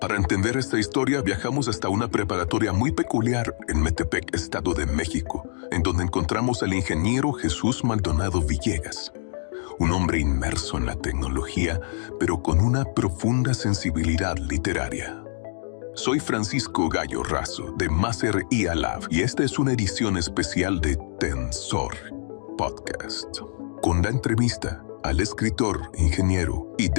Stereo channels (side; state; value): right; silent; digital silence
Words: entender esta historia, viajamos hasta una preparatoria muy peculiar en Metepec, Estado de México, en donde encontramos al ingeniero Jesús Maldonado Villegas, un hombre inmerso en la tecnología, pero con una profunda sensibilidad literaria. Soy Francisco Gallo Razo, de Maser IA Lab, y esta es una edición especial de Tensor Podcast, con la entrevista al escritor, ingeniero y